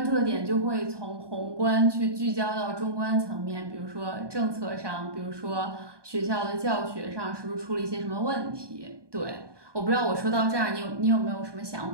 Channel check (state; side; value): late; left; 1.2 ms